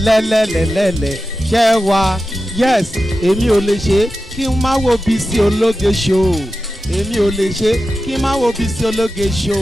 ṣẹ́ wá yes èmi ò lè ṣe kí n má wo Bisi ológe show èmi ò lè ṣe kí n má wo Bisi ológe show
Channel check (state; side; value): normal; both; correlation 0.92